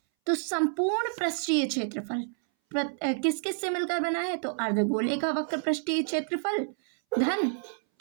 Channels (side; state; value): left; silent; 58 dB below the other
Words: तो संपूर्ण पृष्ठीय क्षेत्रफल किस किस से मिलकर बना है, तो अर्धगोले का वक्र पृष्ठीय क्षेत्रफल धन